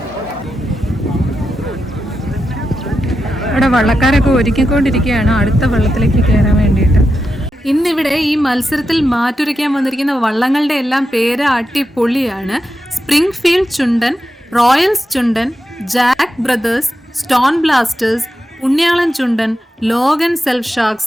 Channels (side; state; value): both; normal; correlation 0.88